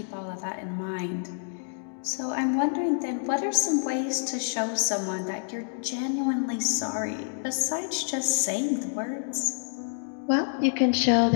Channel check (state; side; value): silent; right; digital silence